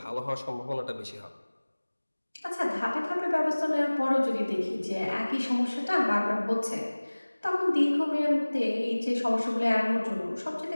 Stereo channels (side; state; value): both; inverted; correlation -1.00